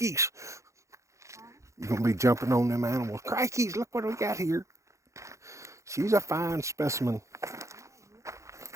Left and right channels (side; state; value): left; late; 0.15 ms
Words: You're gonna be jumping on them animals. Crikeys! Look what we got here. She's a fine specimen.